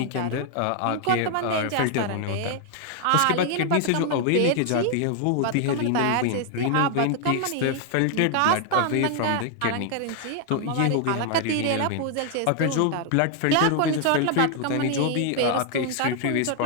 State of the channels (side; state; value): both; different; correlation 0.00